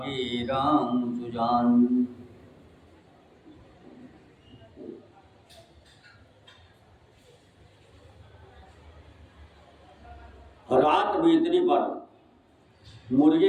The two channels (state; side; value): identical; both; correlation 1.00